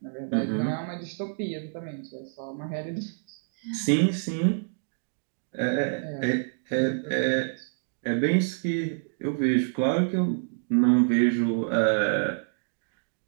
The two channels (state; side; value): silent; left; digital silence